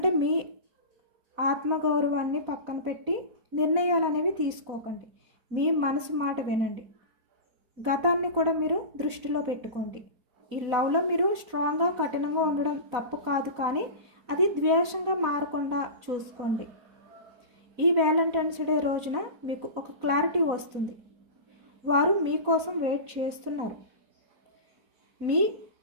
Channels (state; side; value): late; left; 4.1 ms